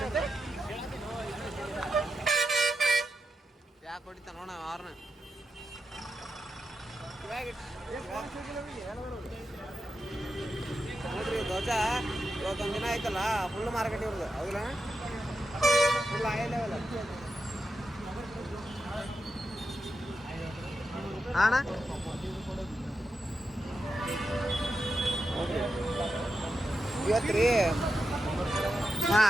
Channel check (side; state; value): both; normal; correlation 0.88